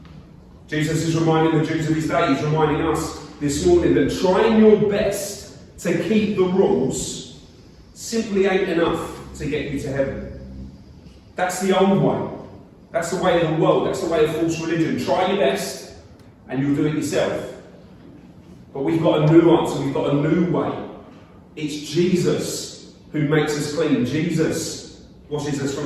Jesus is reminding the Jews of his day. He's reminding us this morning that trying your best to keep the rules simply ain't enough to get you to heaven. That's the old way. That's the way of the world. That's the way of false religion. Try your best and you'll do it yourself. But we've got a new answer. We've got a new way. It's Jesus who makes us clean. Jesus washes us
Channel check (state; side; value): identical; both; correlation 1.00